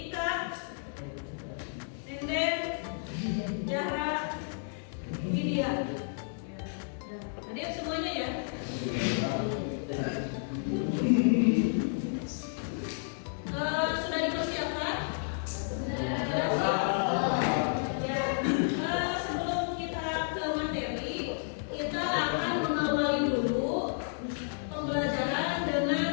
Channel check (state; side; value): silent; right; digital silence